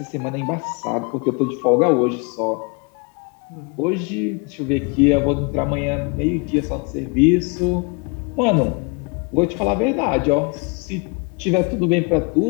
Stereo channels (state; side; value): quieter; right; 32.2 dB